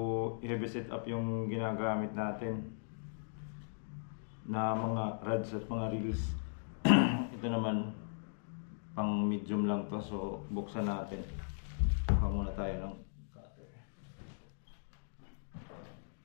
heavy setup yung ginagamit natin na mga rods at mga reels. Ito naman pang medium lang to, so buksan natin. Baka muna tayo ng cutter.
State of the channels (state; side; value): silent; right; digital silence